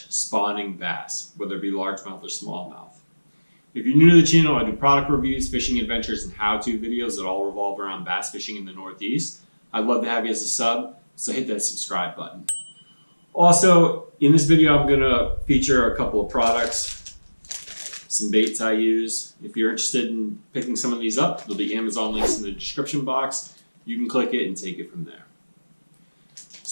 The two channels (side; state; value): both; inverted; correlation -1.00